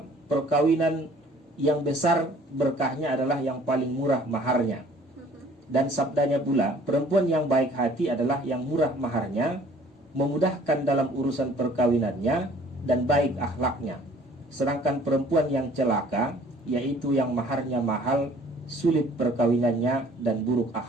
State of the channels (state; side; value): normal; both; correlation 0.54